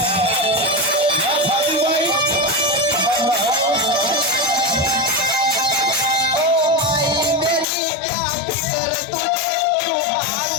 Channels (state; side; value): drops out; right; at 7.7 s